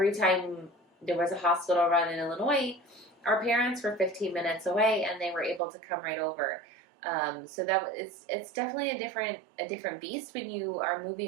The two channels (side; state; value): left; drops out; at 5.6 s